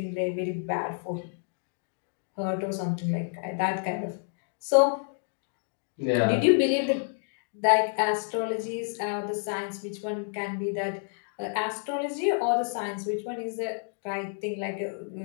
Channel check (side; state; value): right; silent; 58 dB below the other